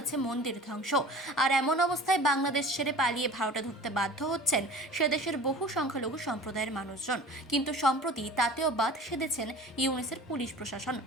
মন্দির ধ্বংস। আর এমন অবস্থায় বাংলাদেশ ছেড়ে পালিয়ে ভারতে ঢুকতে বাধ্য হচ্ছেন সে দেশের বহু সংখ্যালঘু সম্প্রদায়ের মানুষজন। কিন্তু সম্প্রতি তাতেও বাদ সেধেছেন ইউনিসের পুলিশ প্রশাসন।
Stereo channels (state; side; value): normal; both; correlation 0.41